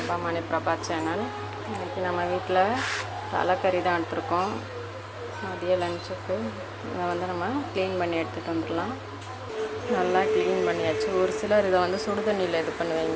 Mani Prabha channel. இன்றைக்கி நம்ம வீட்டில் தலைக்கறி தான் எடுத்துருக்கோம். மதிய லஞ்சுக்கு இதை நம்ம க்ளீன் பண்ணி எடுத்துகிட்டு வந்துடலாம். நல்லா க்ளீன் பண்ணியாச்சு. ஒரு சிலர் இதை சுடு தண்ணியில் இது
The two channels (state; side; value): identical; both; correlation 1.00